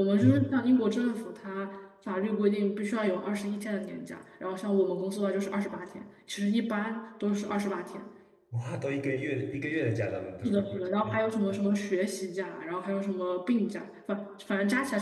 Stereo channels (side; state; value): both; identical; correlation 1.00